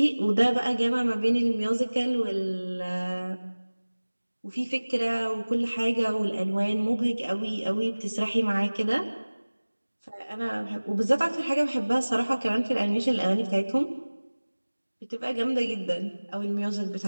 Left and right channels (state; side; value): inverted; both; correlation -1.00